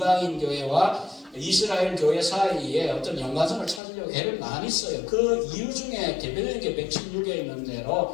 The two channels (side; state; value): right; drops out; at 3.8 s